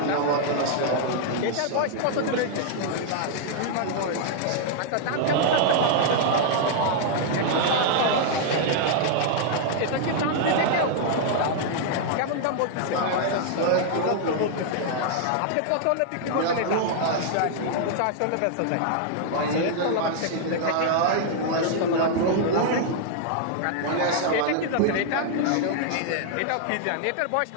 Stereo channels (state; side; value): different; both; correlation -0.01